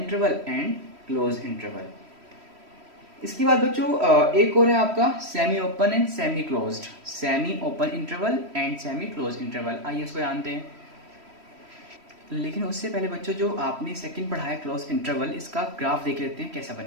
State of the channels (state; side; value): late; left; 3.1 ms